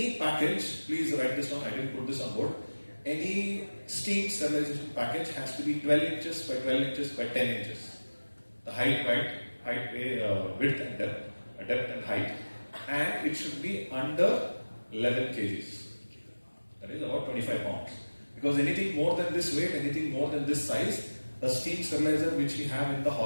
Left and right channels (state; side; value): inverted; both; correlation -1.00